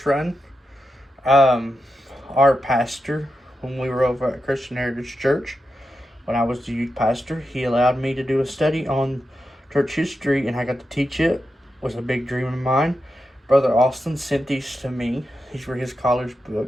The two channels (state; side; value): normal; both; correlation 0.88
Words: run, our pastor, when we were over at Christian Heritage Church, when I was the youth pastor, he allowed me to do a study on church history, and I got to teach it. It was a big dream of mine. Brother Austin sent these to me. These were his college